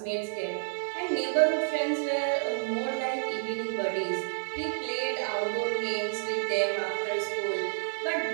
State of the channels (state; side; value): silent; left; 58 dB below the other